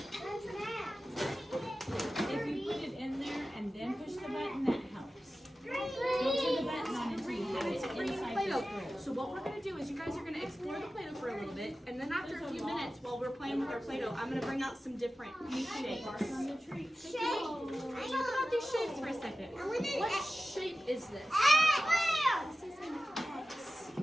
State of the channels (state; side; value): normal; both; correlation 0.94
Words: If you put it in there and then push the button, that helps. Don't turn the button on until you have it inside the screw. So what we're going to do is you guys are going to explore the Play-Doh for a little bit, and then after a few minutes while we're playing with our Play-Doh, I'm going to bring out some different new shapes. Talk about these shapes for a second. What shape is this? This is an X.